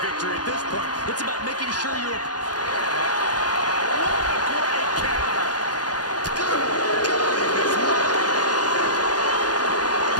victory at this point. It's about making sure you're... What a great counter.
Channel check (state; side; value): late; right; 0.69 ms